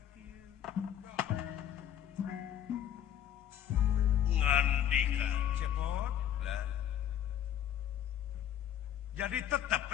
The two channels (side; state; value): right; quieter; 10.2 dB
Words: kieu ngandika cepot lah jadi tetep